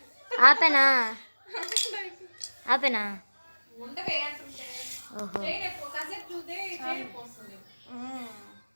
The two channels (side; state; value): both; inverted; correlation -1.00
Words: ఆపేనా? ఆపేనా? ఉండవే అంటుంటే ఓహో,